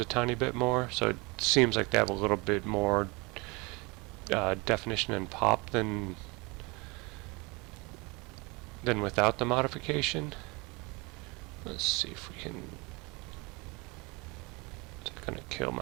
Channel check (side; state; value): left; quieter; 26.8 dB